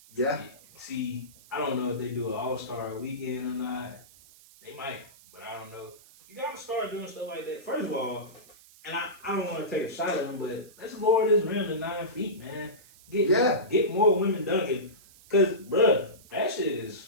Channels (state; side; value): noise; right; hiss, 24 dB below the sound